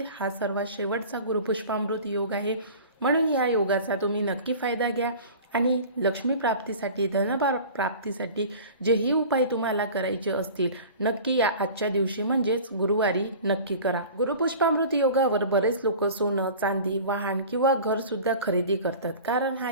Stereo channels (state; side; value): inverted; both; correlation -0.40